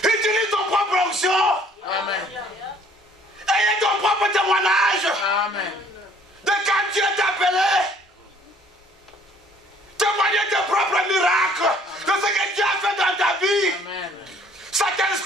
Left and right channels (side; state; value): both; normal; correlation 0.58